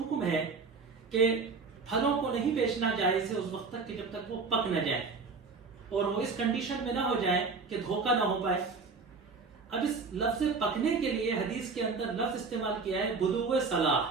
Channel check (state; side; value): quieter; left; 4.6 dB